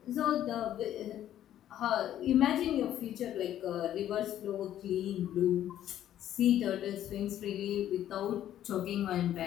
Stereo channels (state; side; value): quieter; right; 11.7 dB